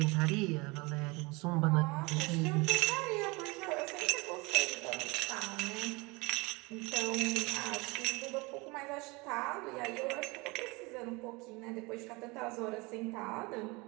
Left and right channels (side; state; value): left; quieter; 25.7 dB